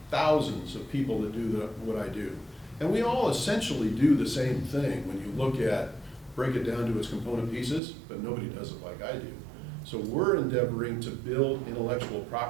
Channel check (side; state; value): left; drops out; at 7.8 s